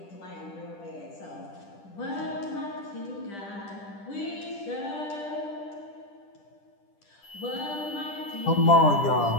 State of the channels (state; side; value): late; right; 10 ms